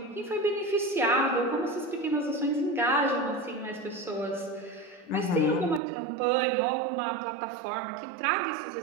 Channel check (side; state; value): left; drops out; at 5.8 s